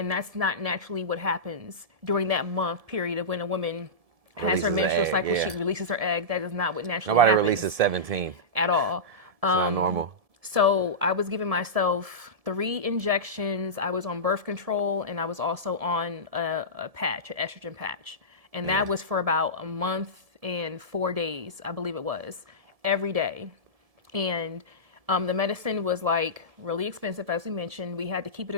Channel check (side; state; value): left; late; 1.7 ms